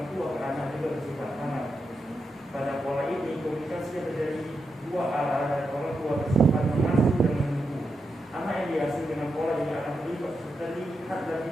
tua ke anak juga bersifat aman. Pada pola ini, komunikasi yang terjadi dua arah dari orang tua bersifat mengasuh dan menunggu. Anak yang diasuh dengan pola ini akan terlihat lebih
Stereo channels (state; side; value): normal; both; correlation 0.86